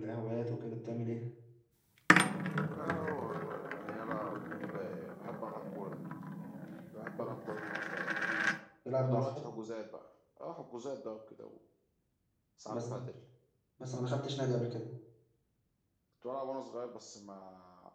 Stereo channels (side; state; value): both; identical; correlation 1.00